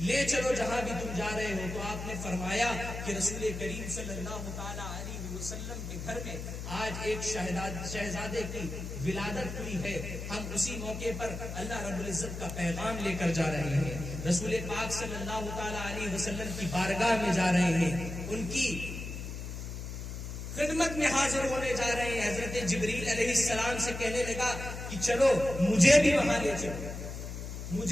چلو جہاں بھی تم جا رہے ہو. تو آپ نے فرمایا کہ رسول کریم صلی اللہ تعالی علیہ وسلم کے گھر میں آج ایک شہزادے کی ولادت ہوئی ہے. ہم اسی موقع پر اللہ رب العزت کا پیغام لے کر جا رہے ہیں. رسول پاک صلی اللہ تعالی علیہ وسلم کی بارگاہ میں جا رہے ہیں، ان کی خدمت میں حاضر ہونے جا رہے ہیں. حضرت جبریل علیہ السلام سے کہنے لگا کہ چلو مجھے بھی وہاں لے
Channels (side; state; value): left; noise; hum, 7 dB below the sound